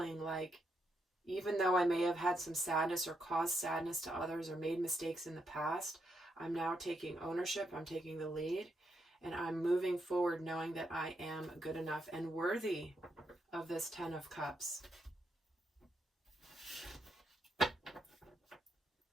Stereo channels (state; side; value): normal; both; correlation 0.81